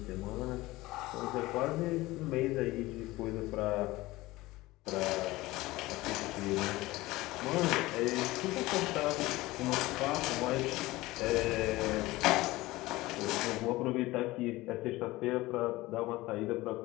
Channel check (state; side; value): quieter; right; 19.2 dB